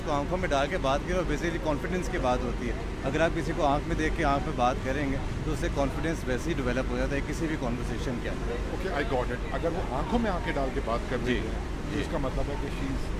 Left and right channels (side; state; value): both; identical; correlation 1.00